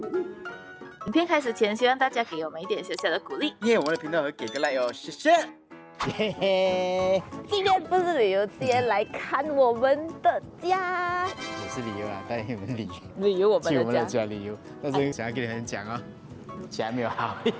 影片開始前，希望大家給我們一點小小的鼓勵。我們的頻道會給個 like 哦，謝謝。嘿嘿，今天不是旅遊，今天來看我們的家。也是旅遊啊，帶你們旅遊我们去我们的的家家旅游。但是想要跟你們講哦，家沒有好。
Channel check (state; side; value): identical; both; correlation 1.00